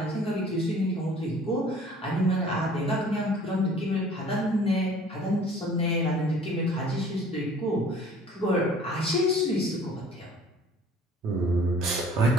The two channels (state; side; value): normal; both; correlation 0.51